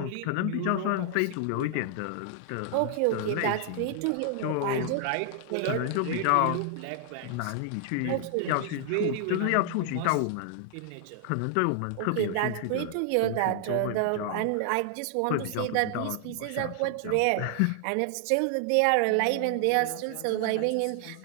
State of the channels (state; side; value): different; both; correlation 0.00